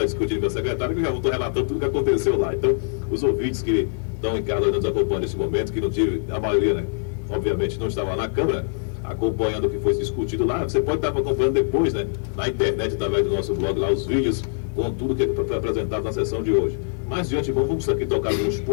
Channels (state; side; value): silent; right; digital silence